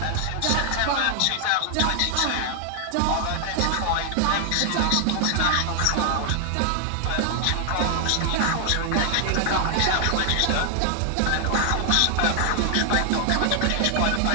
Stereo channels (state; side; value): different; both; correlation 0.00